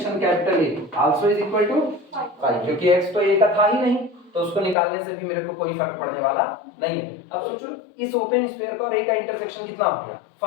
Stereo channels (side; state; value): right; drops out; at 4.8 s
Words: capital A also is equal to 5, क्योंकि x तो a का था ही नहीं तो उसको निकालने से भी मेरे को कोई फर्क पड़ने वाला नहीं है। अब सोचो इस ओपन स्फीयर का और a का इंटरसेक्शन कितना हो गया,